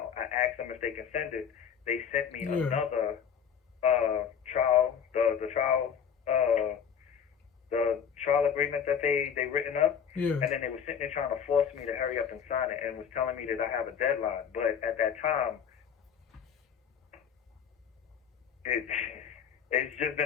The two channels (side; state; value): right; quieter; 7.7 dB